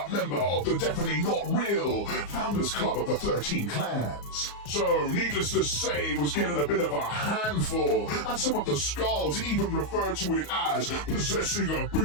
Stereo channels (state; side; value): late; right; 34 ms